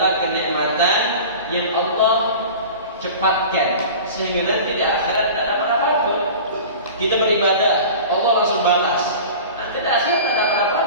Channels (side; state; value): both; inverted; correlation -0.37